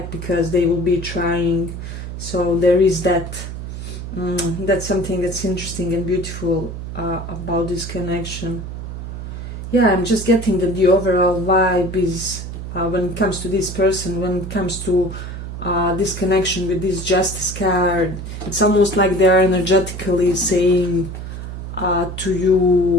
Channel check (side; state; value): right; noise; hum, 8 dB below the sound